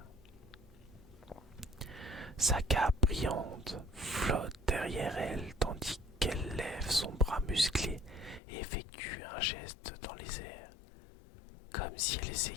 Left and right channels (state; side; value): drops out; right; at 8.4 s